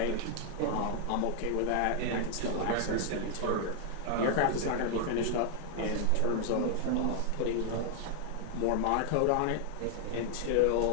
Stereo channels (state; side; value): different; both; correlation 0.00